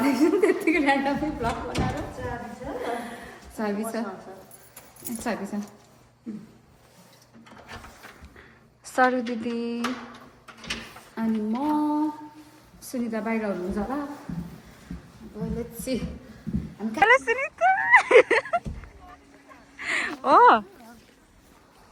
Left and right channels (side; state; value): both; identical; correlation 1.00